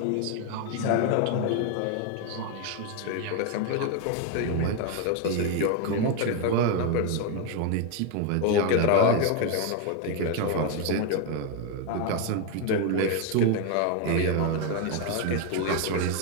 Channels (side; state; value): both; different; correlation 0.01